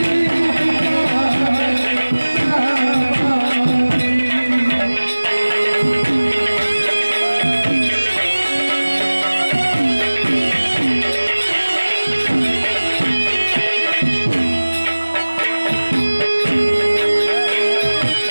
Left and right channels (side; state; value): both; inverted; correlation -1.00